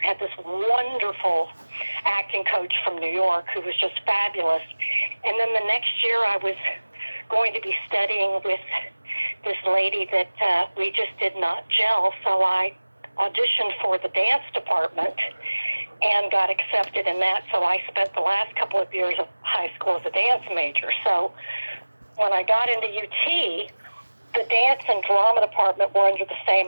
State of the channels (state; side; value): inverted; both; correlation -1.00